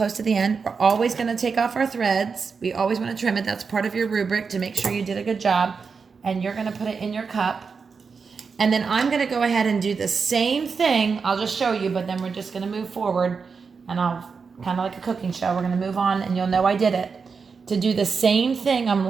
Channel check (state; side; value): quieter; left; 5.3 dB